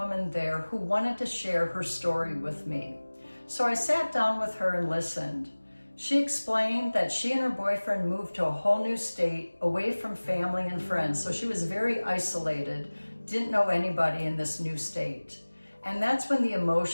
there who wanted to share her story with me. So I sat down with her and listened. She explained that she and her boyfriend moved to a whole new state, away from family and friends. So she was very isolated, didn't know anybody in this new state. And that's when the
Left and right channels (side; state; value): both; inverted; correlation -1.00